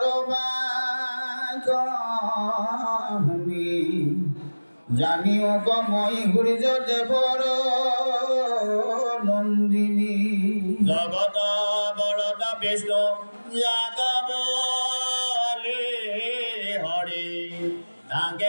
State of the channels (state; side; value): inverted; both; correlation -1.00